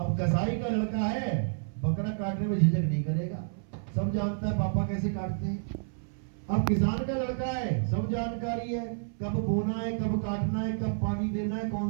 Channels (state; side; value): silent; left; 58 dB below the other